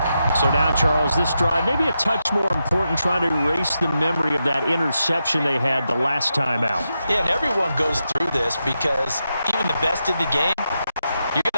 So now, Charles, this drive maybe a touch more important, trying to erase the memory of that interception they had the last time out. Yeah, and everyone goes through this because even the best in the game, you're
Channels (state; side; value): inverted; both; correlation -0.87